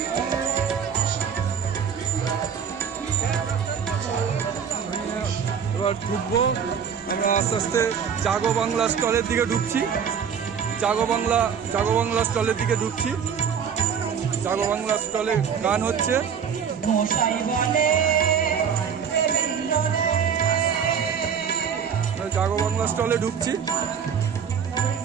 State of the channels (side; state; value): left; quieter; 7.3 dB